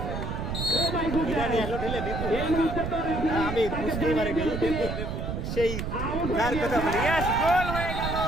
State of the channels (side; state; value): right; noise; rumble, 4 dB below the sound